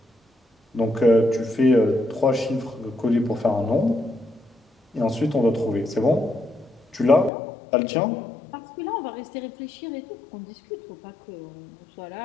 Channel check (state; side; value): drops out; right; at 7.3 s